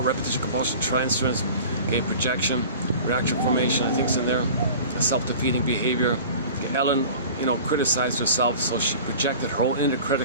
repetition, compulsion, transference, okay, projection, reaction formation, I think it's in there, self-defeating behavior. Okay, Ellen, criticized herself, so she projected her own inner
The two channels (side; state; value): both; inverted; correlation -0.41